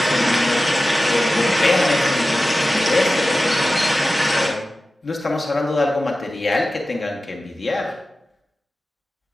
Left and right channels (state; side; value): normal; both; correlation 0.95